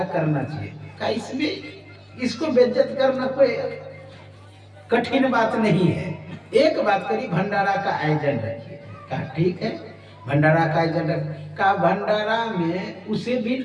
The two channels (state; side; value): identical; both; correlation 1.00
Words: करना चाहिए। कहा इसमें इसको बेइज्जत करना कोई कठिन बात नहीं है, एक बात करी, भंडारा का आयोजन रखिए। कहा ठीक है, भंडारा का आयोजन रख। कहा भंडारा में उसे भी